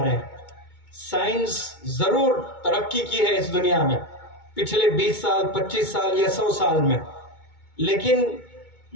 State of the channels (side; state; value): right; late; 2.2 ms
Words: رہے ہیں۔ سائنس ضرور ترقی کی ہے اس دنیا میں پچھلے 20 سال، 25 سال یا 100 سال میں، لیکن